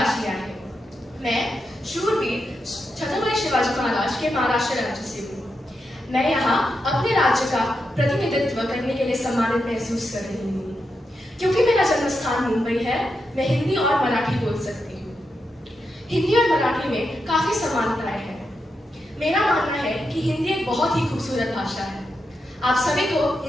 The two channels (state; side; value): normal; both; correlation 0.86